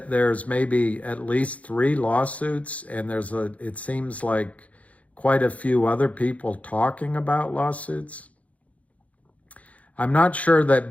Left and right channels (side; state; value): right; late; 0.067 ms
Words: there's maybe at least 3 lawsuits, and it seems like quite a few other people talking about lawsuits. I'm not sure